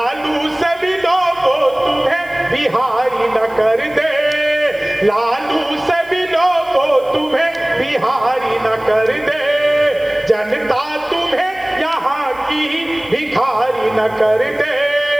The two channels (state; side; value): noise; left; hiss, 26 dB below the sound